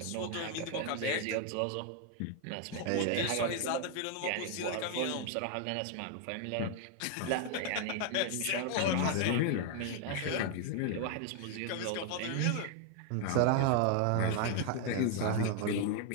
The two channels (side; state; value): both; different; correlation 0.00